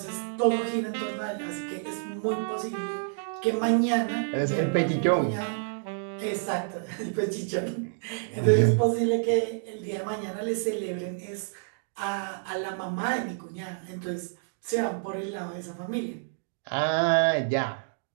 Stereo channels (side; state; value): left; silent; digital silence